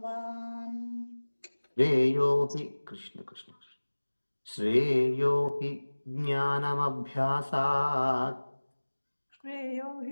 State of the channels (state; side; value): inverted; both; correlation -1.00